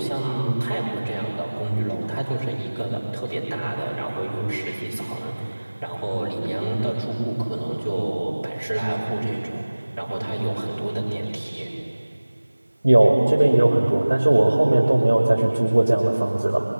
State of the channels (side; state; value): both; inverted; correlation -1.00